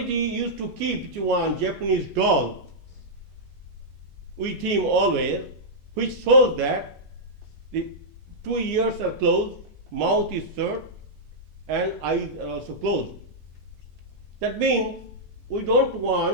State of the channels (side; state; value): left; late; 2.2 ms